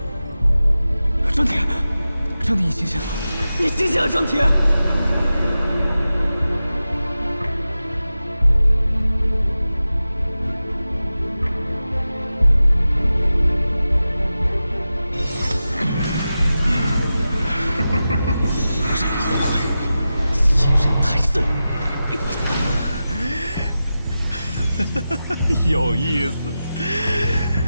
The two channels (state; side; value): inverted; both; correlation -0.93